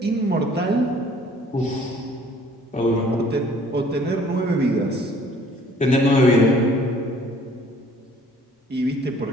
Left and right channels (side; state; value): both; normal; correlation 0.56